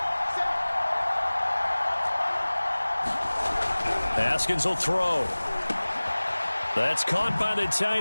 Haskins will throw. That's caught by the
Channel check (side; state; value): both; inverted; correlation -1.00